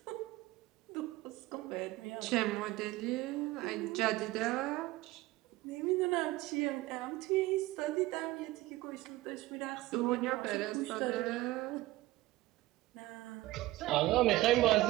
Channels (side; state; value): left; quieter; 18.2 dB